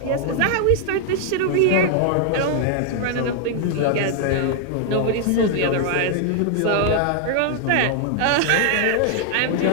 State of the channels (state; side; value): different; both; correlation 0.00